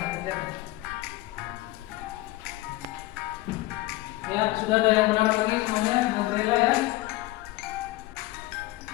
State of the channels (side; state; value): right; quieter; 18.4 dB